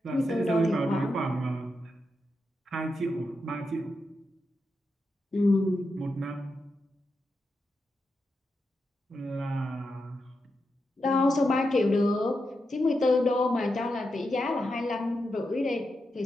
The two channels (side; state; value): both; normal; correlation 0.86